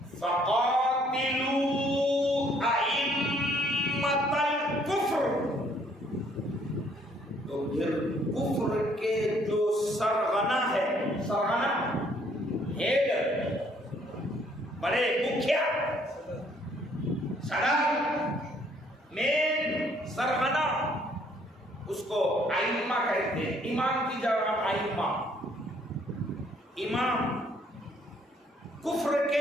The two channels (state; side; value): normal; both; correlation 0.64